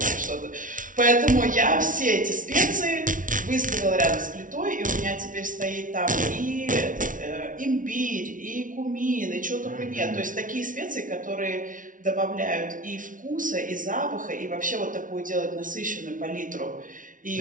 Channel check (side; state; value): left; late; 0.38 ms